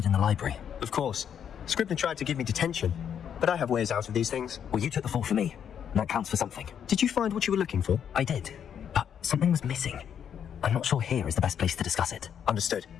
in the library. Of course. Scribner tried to give me detention, but I have ways out of these things. Well, you took the fall for me. And that counts for something. Did you find what you were looking for? I did. But something was missing. I'm not sure here is the best place to discuss it. Understood.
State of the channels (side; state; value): right; quieter; 8.5 dB